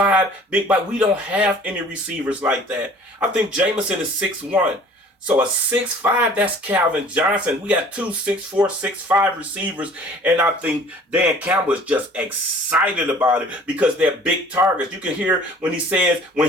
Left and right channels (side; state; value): both; normal; correlation 0.50